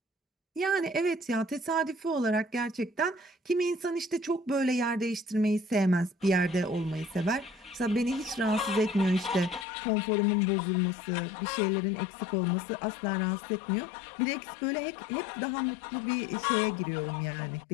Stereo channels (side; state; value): right; drops out; at 9.7 s